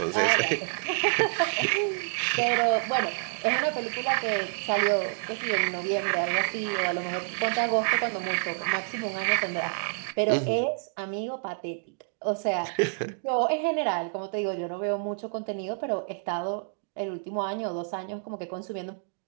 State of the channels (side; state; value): left; silent; digital silence